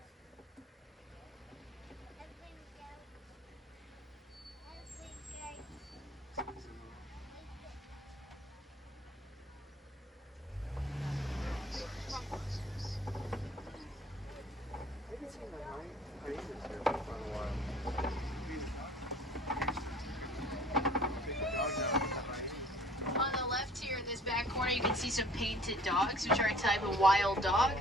corner you can see some painted dogs, which are a type of wild dog.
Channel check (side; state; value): both; normal; correlation 0.51